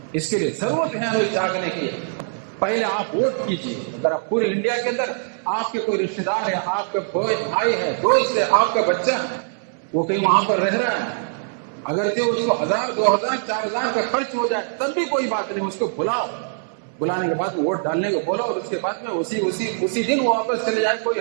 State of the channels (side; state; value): left; silent; digital silence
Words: اس کے لیے ضرورت ہے ہمیں جاگنے کی. پہلے آپ ووٹ کیجیے. اگر آپ پورے انڈیا کے اندر آپ کے کوئی رشتے دار ہے، آپ کا بھائی ہے، دوست ہے، آپ کا بچہ وہ کہیں وہاں پر رہ رہا ہے، اگرچہ اس کو 1000 2000 4000 کا خرچ ہو جائے تب بھی کوئی بات نہیں، اس کو بلاؤ. بلانے کے بعد ووٹ ڈالنے کو بولو، اور اس کے بعد میں اسی دن وہ واپس چلے جائے، کوئی